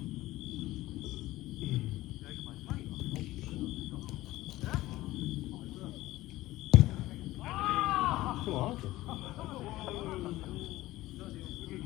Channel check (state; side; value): quieter; right; 17.2 dB